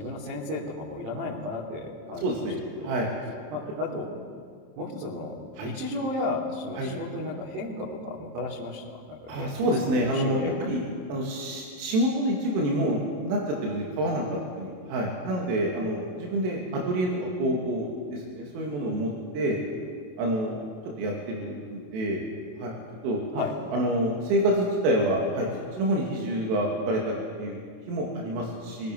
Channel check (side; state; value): left; late; 27 ms